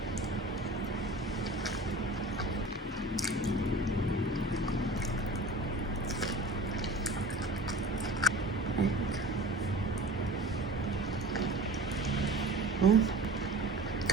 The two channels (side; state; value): both; normal; correlation 0.38